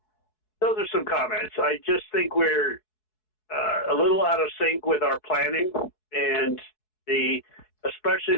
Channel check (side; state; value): right; late; 4.7 ms